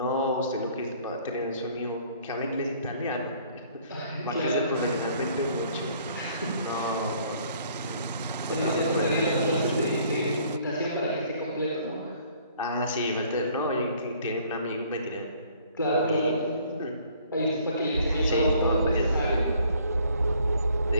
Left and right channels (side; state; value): both; inverted; correlation -0.59